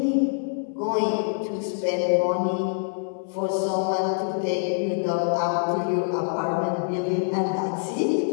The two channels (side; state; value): right; silent; digital silence